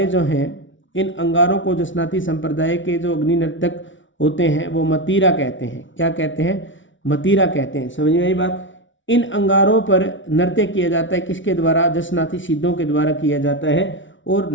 जो हैं, इन अंगारों को जसनाती संप्रदाय के जो अग्नि नर्तक होते हैं वो मतीरा कहते हैं। क्या कहते हैं? मतीरा कहते हैं। समझ में आई बात? इन अंगारों पर नृत्य किया जाता है, किसके द्वारा? जसनाती सिद्धों के द्वारा किया जाता है। और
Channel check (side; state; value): right; late; 0.56 ms